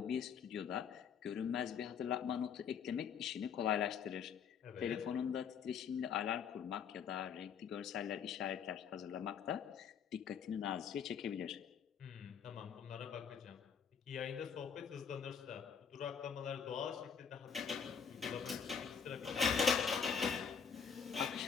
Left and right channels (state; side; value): quieter; right; 7.0 dB